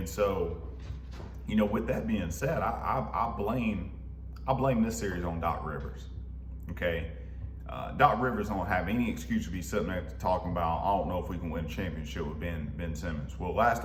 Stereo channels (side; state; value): both; identical; correlation 1.00